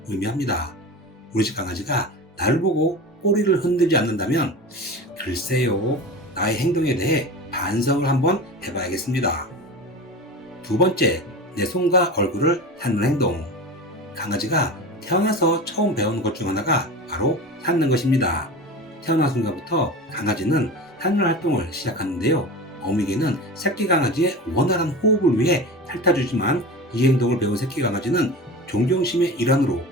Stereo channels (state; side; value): normal; both; correlation 0.31